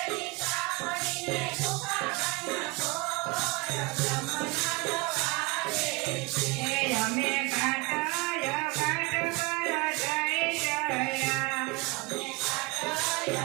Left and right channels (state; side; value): quieter; left; 26.1 dB